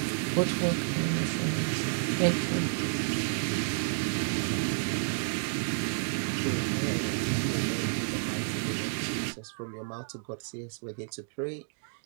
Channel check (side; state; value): left; silent; digital silence